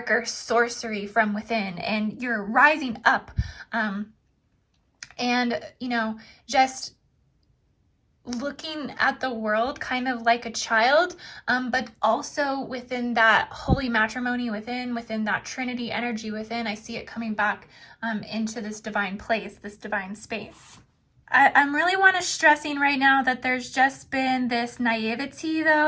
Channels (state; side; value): identical; both; correlation 1.00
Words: sorcery from within, and you're rising up. Just looking at the world kind of like a child, but also within that holy matrimony within that Trinity energy within. I see it coming back into this divine place, this divine space. I'm really want to stressing right now that there's just been this naivety,